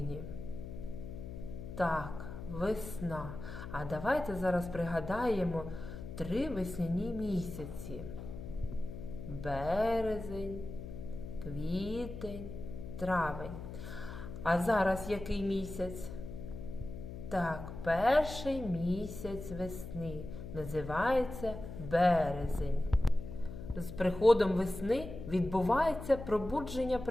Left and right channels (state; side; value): noise; left; hum, 9 dB below the sound